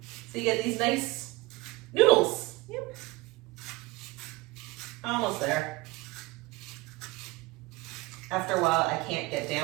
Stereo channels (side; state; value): left; quieter; 21.2 dB